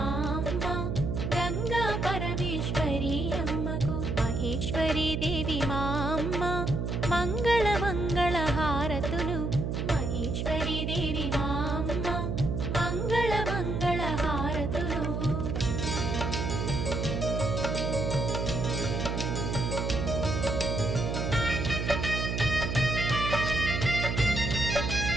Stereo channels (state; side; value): noise; right; hum, 1 dB below the sound